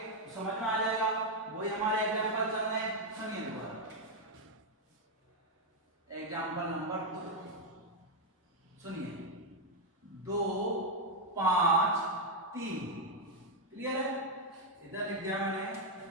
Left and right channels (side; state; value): both; normal; correlation 0.02